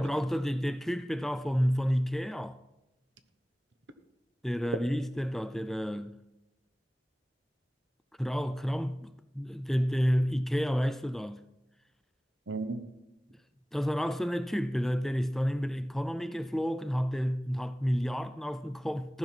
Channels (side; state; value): both; normal; correlation 0.97